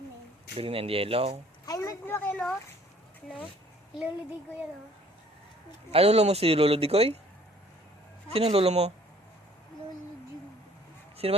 Green and yellow. Ay, lagi no? No? Luludi ko yan, oh. Ay, lolo mo si Lolo Digoy? Sino ang lolo mo? Luludi. Sino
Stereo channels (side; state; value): both; normal; correlation 0.57